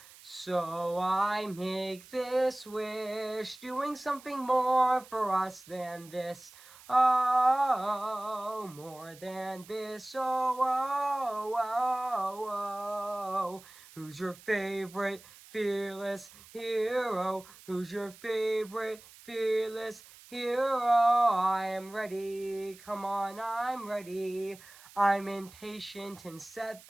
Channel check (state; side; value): noise; right; hiss, 21 dB below the sound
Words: so I make this wish, doing something more for us than this. Oh, more than this. Oh, oh, oh, oh. Who's your favorite fearless hero? Who's your favorite fearless hero? I am ready. Come on, I'm ready. I'm impatient in